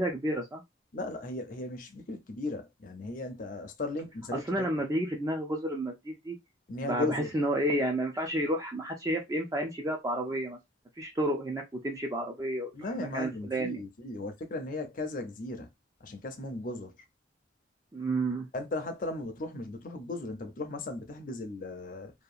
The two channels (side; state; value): both; normal; correlation 0.49